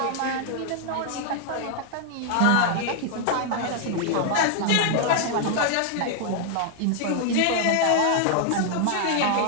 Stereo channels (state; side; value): different; both; correlation 0.00